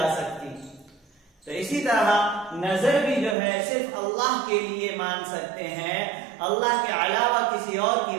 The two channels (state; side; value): drops out; left; at 3.4 s